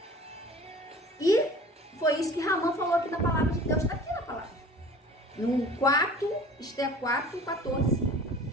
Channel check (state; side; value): normal; both; correlation 0.44